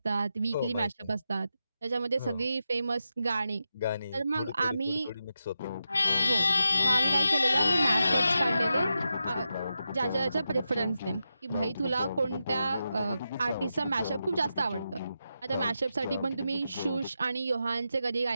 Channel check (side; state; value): both; inverted; correlation -0.88